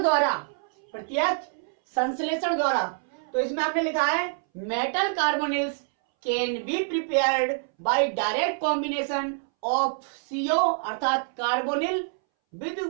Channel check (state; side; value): silent; left; 61 dB below the other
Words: द्वारा। तो इसमें आपने लिखा है metal carbonyls can be prepared by direct combination of CO अर्थात carbonyl with